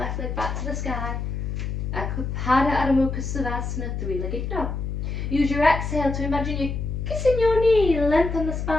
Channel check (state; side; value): noise; left; hum, 3 dB below the sound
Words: leg back to the sky. Pada Ardha Mukha Savasana, three-legged dog. Use your exhale to imagine you're kissing your knee, lengthen the